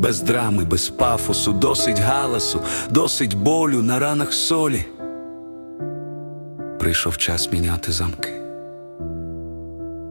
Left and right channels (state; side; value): inverted; both; correlation -1.00